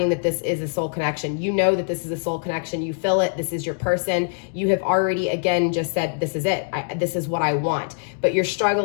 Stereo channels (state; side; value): silent; right; digital silence